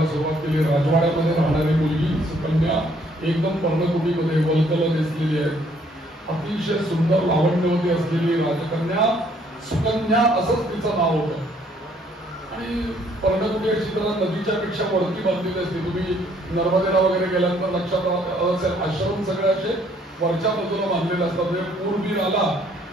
सुरुवात केली. राजवाड्यामध्ये राहणारी मुलगी सुकन्या एकदम पर्णकुटीमध्ये वलकल दिसलेली आहे, अतिशय सुंदर लावण्यवती असलेली राजकन्या सुकन्या असंच तिचं नाव होतं. आणि पर्णकुटी अशी जरा नदीच्या पेक्षा वरती बांधलेली असते. तुम्ही नर्मदेला वगैरे गेल्यानंतर लक्षात असेल, आश्रम सगळे असे वरच्या बाजूला बांधलेले असतात. म्हणजे पूर बीर आला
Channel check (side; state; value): both; normal; correlation 0.64